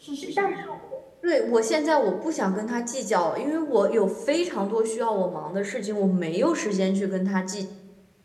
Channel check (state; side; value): identical; both; correlation 1.00